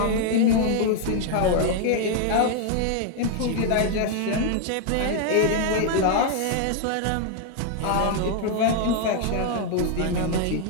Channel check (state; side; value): different; both; correlation 0.00